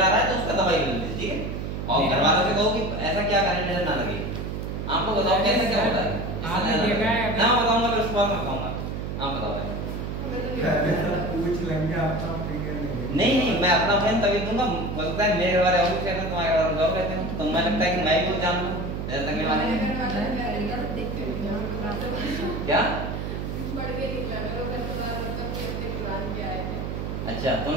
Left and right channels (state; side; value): noise; right; hum, 4 dB below the sound